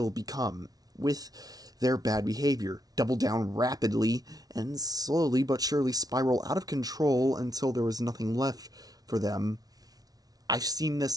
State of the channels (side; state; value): left; late; 0.18 ms